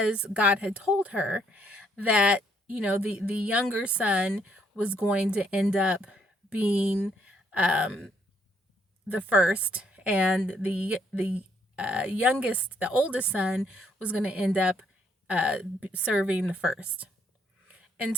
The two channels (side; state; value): both; normal; correlation 0.69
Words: God had told her that, the younger son was going to end up being the first, and the oldest son was going to end up serving the first. And